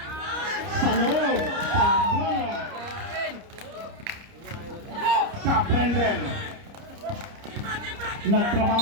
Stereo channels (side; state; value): left; late; 30 ms